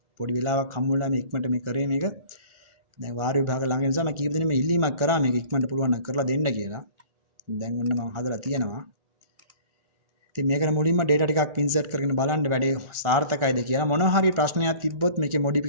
පොඩි වෙලාවක් හම්බුනලා මේ ඉක්මනට මේ කරේ මේක. දැන් වාර විභාග ළඟ නිසා මම කීප දෙනෙක් මේ ඉල්ලීමක් කරා මේක ඉක්මනට පුළුවන් නම් කරලා දෙන්න කියලා. දැන් ඔන්න මම හදලා තියෙනවා. ඉතින් මේකට මුලින්ම data ටිකක් insert කරගෙන බලන්න වැඩේ සාර්ථකයිද කියලා. මොනවා හරි ප්‍රශ්නයක් තිබ්බොත් මේකේ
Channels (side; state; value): left; late; 1.4 ms